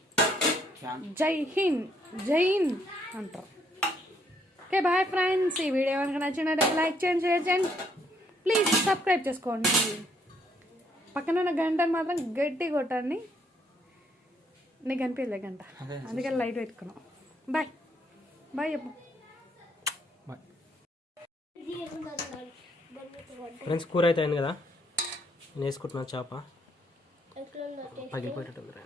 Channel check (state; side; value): normal; both; correlation 0.70